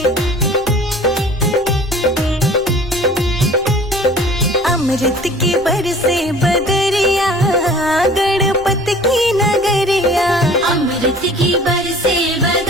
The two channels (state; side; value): noise; left; rumble, 20 dB below the sound